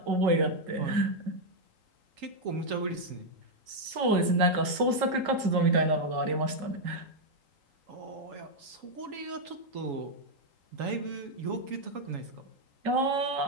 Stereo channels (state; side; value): late; left; 3.8 ms